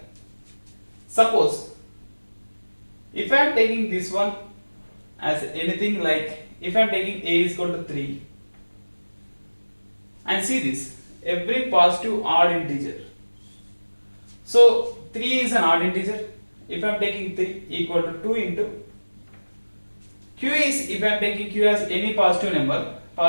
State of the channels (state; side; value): inverted; both; correlation -1.00